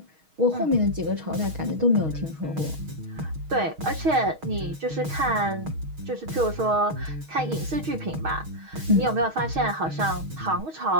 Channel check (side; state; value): left; late; 6.4 ms